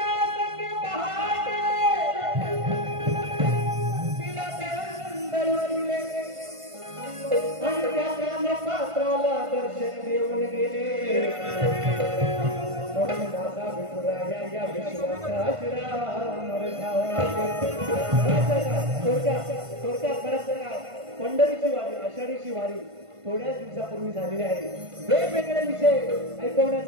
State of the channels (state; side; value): late; left; 1.5 ms